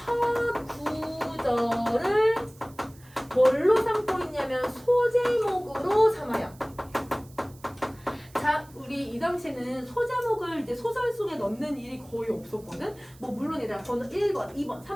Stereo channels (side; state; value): right; noise; hiss, 26 dB below the sound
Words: 구절을 뭘로 삼고 있냐면 소제목으로 삼아요. 자, 우리 이 당시에는 소제목을 이제 소설 속에 넣는 일이 거의 없었거든. 뭐 물론 얘들아 번호 1번, 2번,